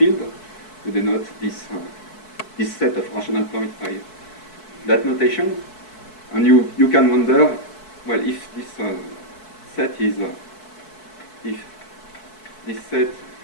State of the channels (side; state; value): right; late; 4.6 ms